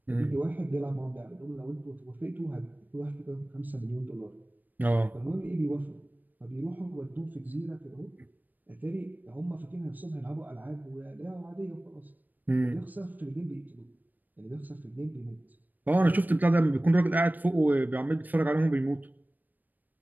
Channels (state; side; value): late; left; 0.086 ms